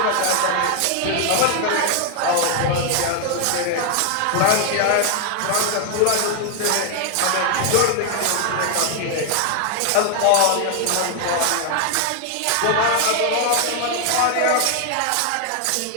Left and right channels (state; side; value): different; both; correlation 0.00